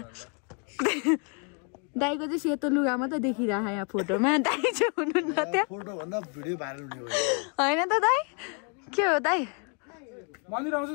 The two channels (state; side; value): quieter; right; 37.5 dB